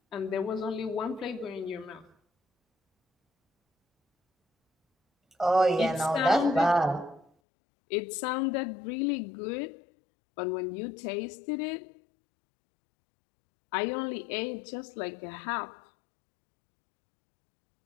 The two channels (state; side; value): drops out; right; at 7.2 s